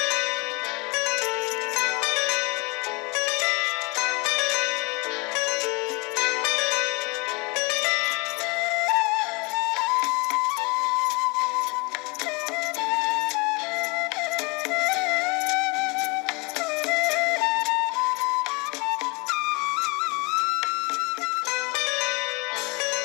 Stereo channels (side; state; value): right; quieter; 28.3 dB